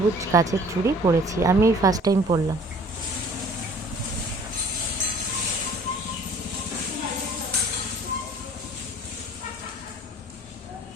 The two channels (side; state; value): both; normal; correlation 0.51